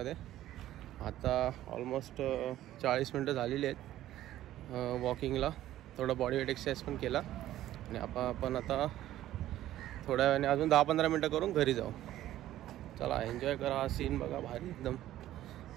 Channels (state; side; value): quieter; left; 13.6 dB